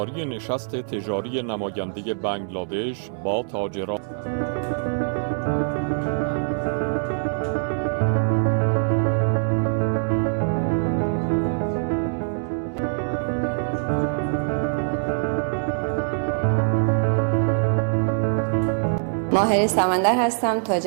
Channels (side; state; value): left; silent; digital silence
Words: نشست تجاری نماینده بنگلادش با تاجران. ماهر سمندر هستم،